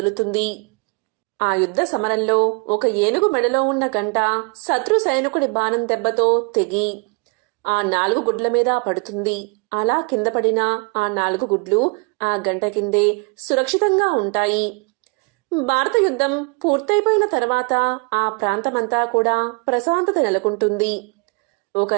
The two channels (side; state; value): left; quieter; 33.0 dB